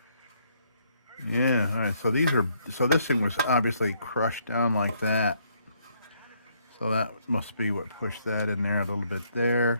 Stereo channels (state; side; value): inverted; both; correlation -0.70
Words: Yeah, all right, so this thing was obviously crushed down like that. So that must be what pushed that in there a little bit there,